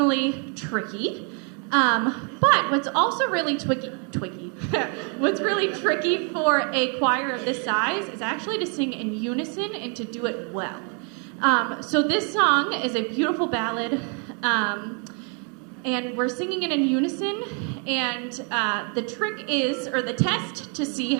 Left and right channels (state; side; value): quieter; left; 37.9 dB